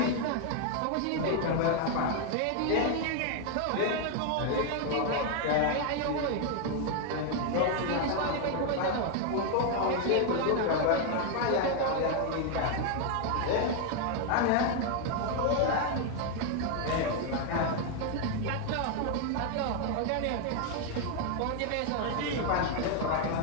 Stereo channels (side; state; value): both; different; correlation 0.01